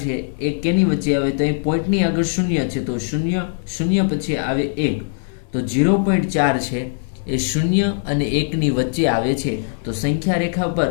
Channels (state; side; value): silent; right; 58 dB below the other